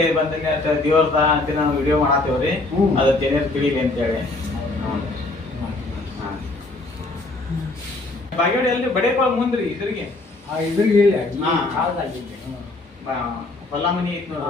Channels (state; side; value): quieter; right; 3.0 dB